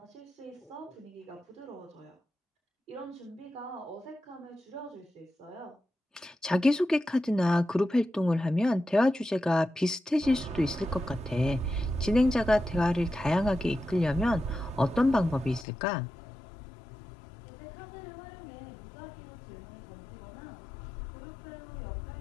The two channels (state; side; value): drops out; right; at 15.7 s